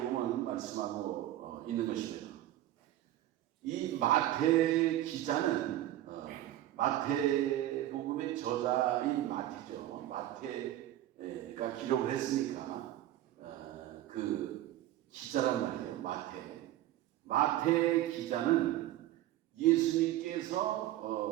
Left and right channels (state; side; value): quieter; left; 14.0 dB